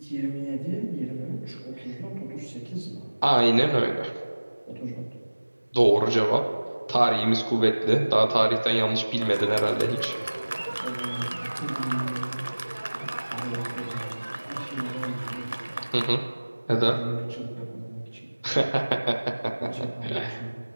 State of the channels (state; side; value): inverted; both; correlation -1.00